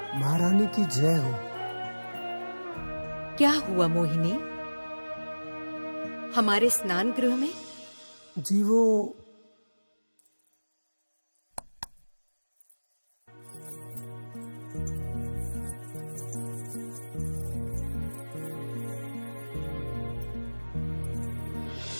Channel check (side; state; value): both; inverted; correlation -1.00